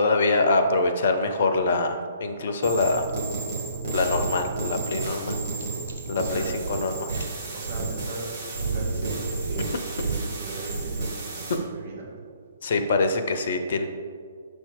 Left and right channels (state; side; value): inverted; both; correlation -0.63